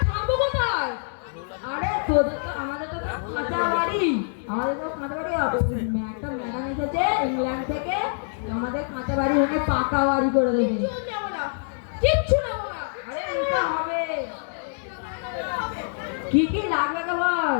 থাকবো কোথায়? আরে তোদের তো, আমাদের তো সব কাঁচা বাড়ি, আমাদের তো কাঁচা বাড়ি। একটা ম্যাডাম এসেছে ইংল্যান্ড থেকে, আমাদের কাঁচা বাড়ি ভেঙে পাকা বাড়ি করে দেবে। কিচ্ছু নেবো না, কিচ্ছু নেবো না। আরে নিতে হবে। কি কি লাগবে কে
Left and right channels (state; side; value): silent; right; digital silence